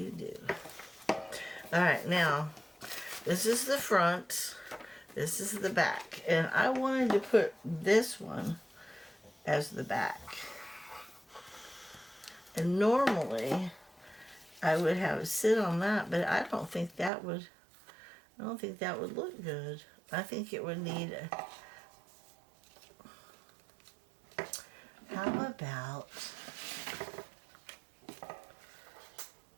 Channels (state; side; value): drops out; left; at 17.1 s